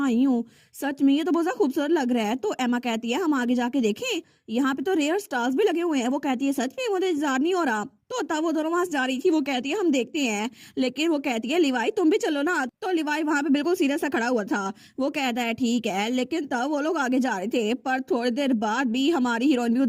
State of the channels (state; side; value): identical; both; correlation 1.00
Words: आई हूँ। सच में ये तो बहुत ज्यादा खूबसूरत लग रहा है। तो एमा कहती है, हम आगे जाके देखें, यहाँ पे तो रेयर स्टार्स भी लगे हुए हैं। वो कहती है, सच में मुझे इंतजार नहीं हो रहा। तो तब वो दोनों वहां से जा रही थी। वो कहती है, हम देखते हैं। लेकिन वो कहती है, लिवाई तुम भी चलो ना। तो लिवाई वहां पे बिल्कुल सीरियस सा खड़ा हुआ था। वो कहता है, ठीक है। लेकिन तब वो लोग आगे जा रहे थे, पर थोड़ी देर बाद भी हमारी हीरोइन भी